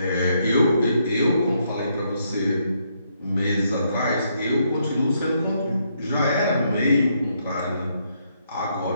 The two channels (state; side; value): inverted; both; correlation -0.75